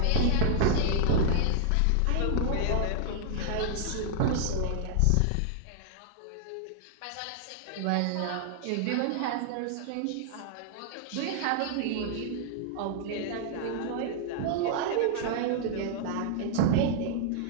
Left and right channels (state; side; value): different; both; correlation -0.01